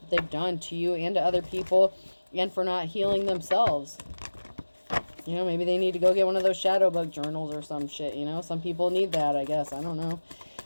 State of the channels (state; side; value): inverted; both; correlation -1.00